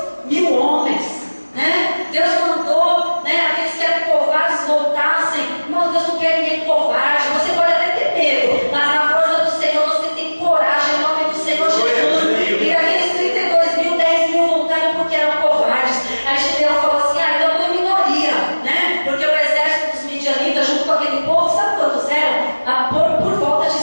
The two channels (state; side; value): inverted; both; correlation -1.00